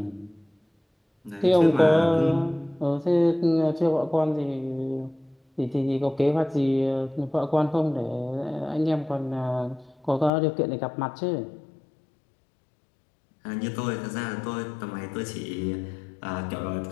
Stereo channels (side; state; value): right; drops out; at 10.3 s